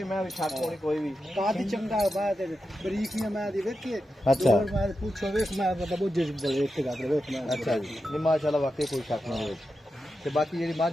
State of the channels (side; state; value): both; normal; correlation 0.89